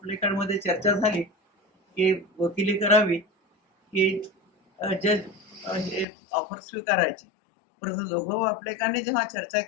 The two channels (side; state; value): right; drops out; at 6.1 s